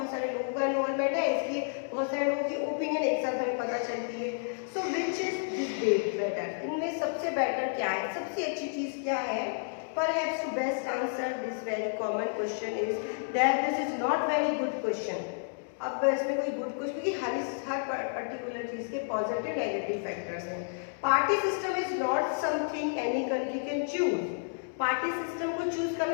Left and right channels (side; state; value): right; silent; digital silence